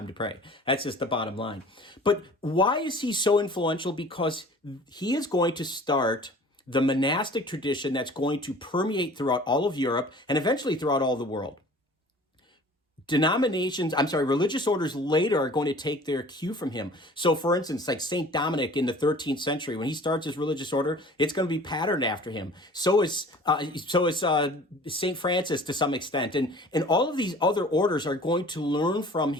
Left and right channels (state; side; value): normal; both; correlation 0.46